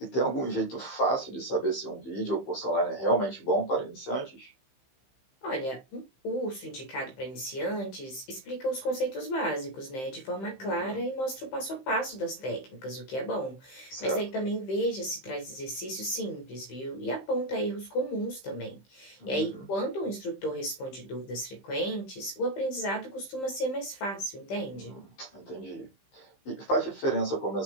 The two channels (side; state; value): right; late; 15 ms